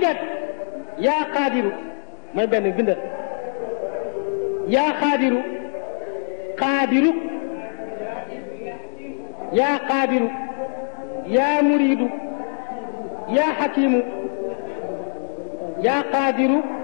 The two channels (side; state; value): right; silent; 63 dB below the other